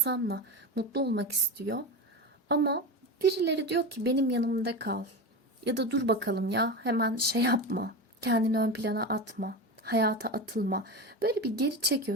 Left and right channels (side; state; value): both; normal; correlation 0.23